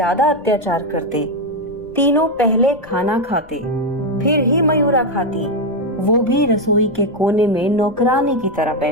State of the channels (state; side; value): noise; left; rumble, 24 dB below the sound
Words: अत्याचार करते। तीनों पहले खाना खाते, फिर ही मयूरा खाती, वो भी रसोई के कोने में नौकरानी की तरह